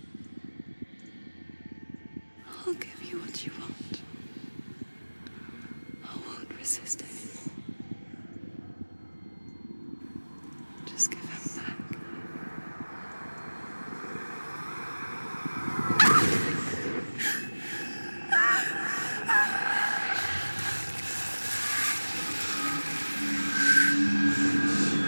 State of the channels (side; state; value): both; inverted; correlation -1.00